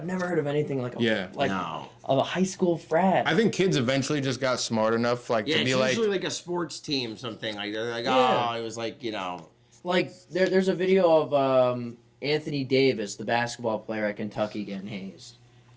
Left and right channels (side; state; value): both; identical; correlation 1.00